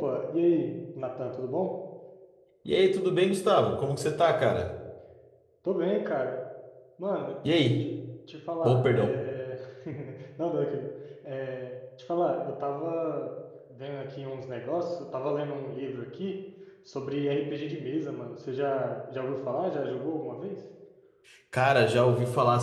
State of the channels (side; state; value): both; identical; correlation 1.00